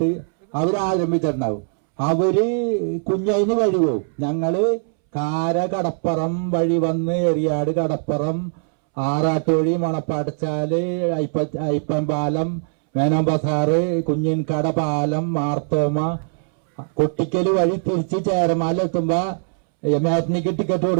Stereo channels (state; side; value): silent; left; 65 dB below the other